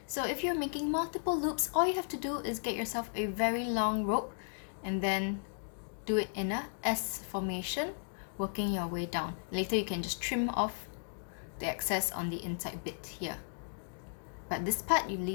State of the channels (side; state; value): right; silent; digital silence